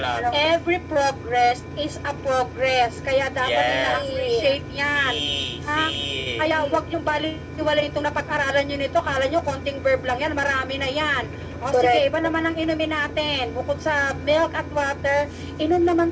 Every progress is a progress. Kaya dapat Yes. ina-appreciate yan. Ha? Kaya huwag yung baliwala itong napag-aralan nyo nito. Kala nyo konting verb lang yan. Marami na yan. O sige, iba naman ang inumin natin. Bukod sa milk at water, inom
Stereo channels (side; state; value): both; identical; correlation 1.00